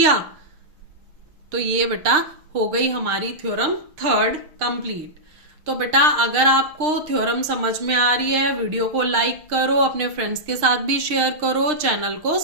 तो ये बेटा हो गई हमारी थ्योरम थर्ड कंप्लीट। तो बेटा अगर आपको थ्योरम समझ में आ रही है, वीडियो को लाइक करो, अपने फ्रेंड्स के साथ भी शेयर करो, चैनल को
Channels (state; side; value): late; left; 6.6 ms